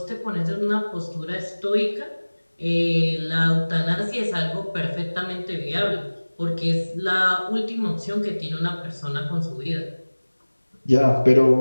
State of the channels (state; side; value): inverted; both; correlation -1.00